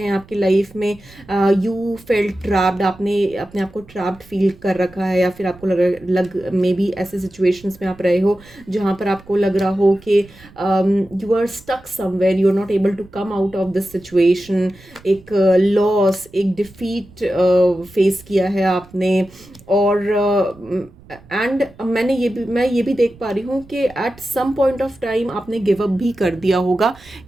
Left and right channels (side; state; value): right; noise; rumble, 24 dB below the sound